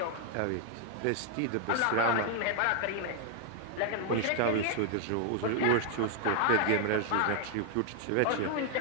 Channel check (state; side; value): different; both; correlation 0.00